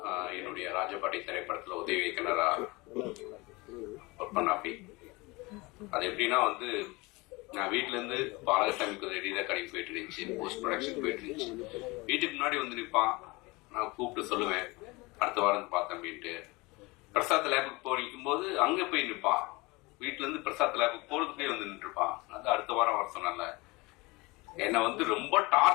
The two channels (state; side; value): quieter; right; 24.2 dB